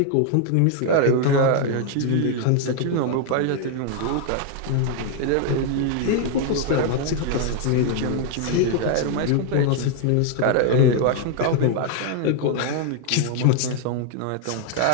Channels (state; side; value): different; both; correlation 0.00